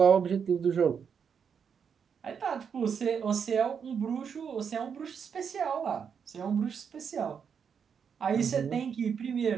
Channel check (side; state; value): left; quieter; 6.9 dB